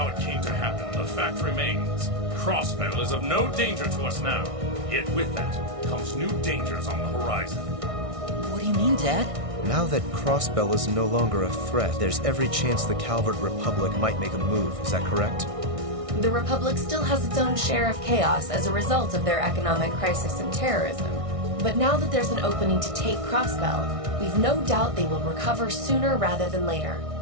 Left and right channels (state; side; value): late; left; 1.6 ms